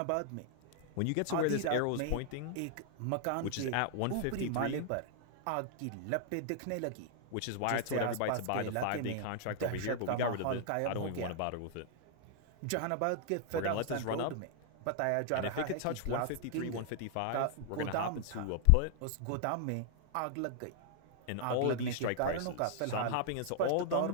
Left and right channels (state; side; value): different; both; correlation 0.00